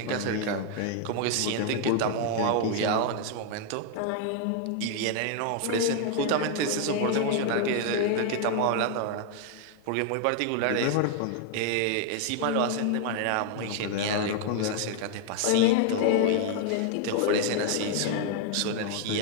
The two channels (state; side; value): different; both; correlation 0.00